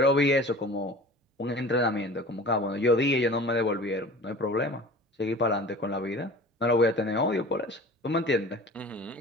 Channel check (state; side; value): normal; both; correlation 0.41